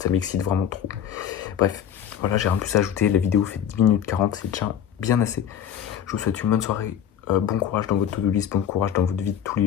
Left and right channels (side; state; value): right; quieter; 9.4 dB